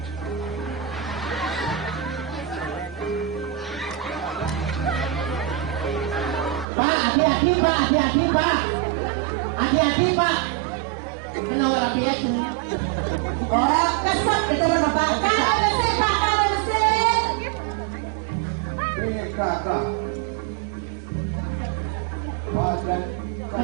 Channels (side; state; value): left; drops out; at 6.7 s